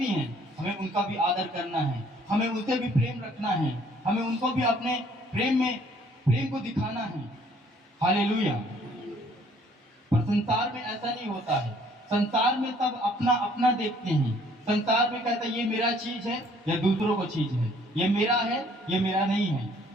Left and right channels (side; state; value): both; normal; correlation 0.60